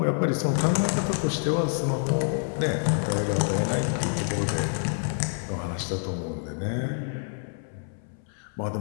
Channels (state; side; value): silent; right; 60 dB below the other